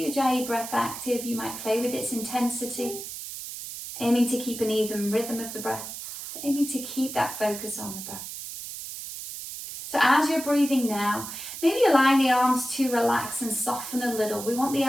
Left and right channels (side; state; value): right; noise; hiss, 9 dB below the sound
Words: Ujjayi breath active, you might play with its intensity, aiming to keep an even rhythm of the breath, aiming to keep that focus on the breath. as you're breathing now, maybe allowing the arms to relax and soften a little. We want the